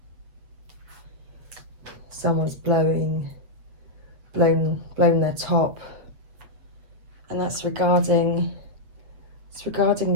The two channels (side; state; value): left; late; 8.1 ms